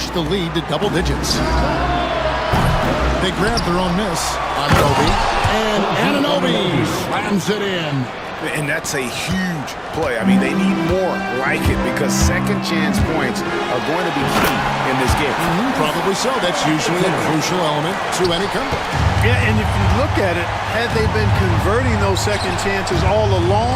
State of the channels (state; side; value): identical; both; correlation 1.00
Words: the lead to double digits. They grabbed their own miss. Anunoby. And Anunoby slams it in. And that's a huge play. I mean, they need more like it because second chance points are going to be key in this game. Probably so. That's usually a crucial element to any comeback. Yeah, and if you look at it, had they been converting those second chances all